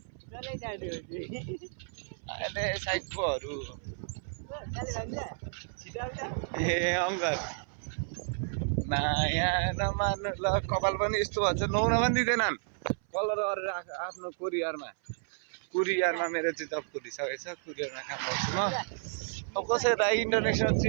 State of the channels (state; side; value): silent; left; 57 dB below the other